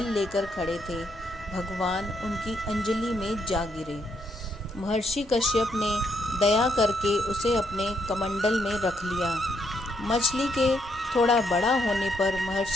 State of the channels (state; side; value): normal; both; correlation 0.75